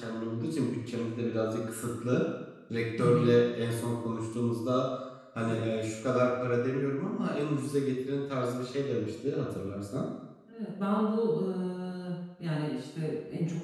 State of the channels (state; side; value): identical; both; correlation 1.00